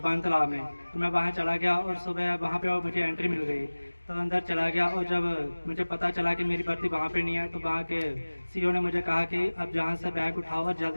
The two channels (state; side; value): inverted; both; correlation -1.00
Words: तालाब में। तो मैं वहाँ चला गया और सुबह वहाँ पे मुझे एंट्री मिल गई तो अंदर चला गया, और जब मुझे पता चला कि मेरी भर्ती वहाँ पे नहीं है तो वहाँ के सीईओ ने मुझे कहा कि अब जहाँ से बैग उठाओ और